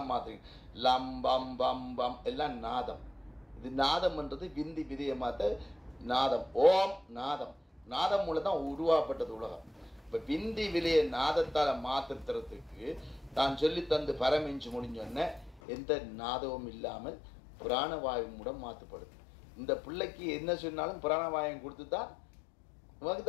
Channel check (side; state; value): right; drops out; at 15.6 s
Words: மாத்திரை. லம்பம் பம் பம் எல்லாம் நாதம். இது நாதம்ன்றது விந்தி விதைய மாத்த நாதம். ஓம் நாதம். நாதம் மூலம் தான் உருவாக்கப்பட்டது உலகம். இப்போ விந்தி விலையை நாதத்தால் மாற்றுறதுக்கு தான் சொல்லி தந்து பரமிஞ்சு முடிஞ்சோடனே எந்த நாதமும் இல்லாமல் பிராணவாயு மூலம் மாற்றப்படுது. இந்த பிள்ளைக்கு என்ன சொன்னாலும் பிராணவாயம் கொடுத்து தான் உனக்கு